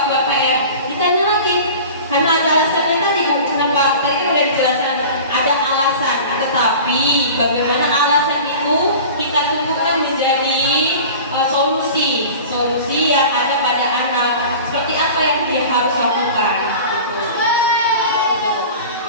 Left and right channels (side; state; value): both; inverted; correlation -0.38